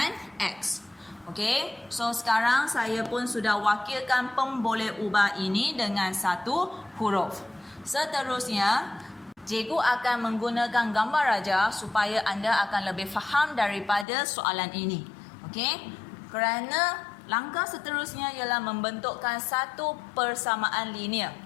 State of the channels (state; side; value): drops out; right; at 14.1 s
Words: X. Okey, so sekarang saya pun sudah wakilkan pemboleh ubah ini dengan satu huruf. Seterusnya, cikgu akan menggunakan gambar raja supaya anda akan lebih faham daripada soalan ini. Okey, kerana langkah seterusnya ialah membentukkan satu persamaan linear.